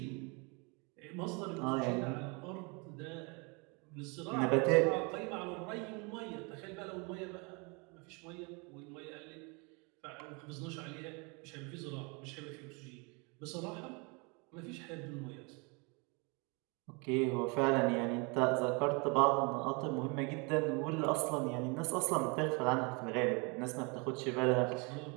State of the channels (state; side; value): quieter; left; 31.0 dB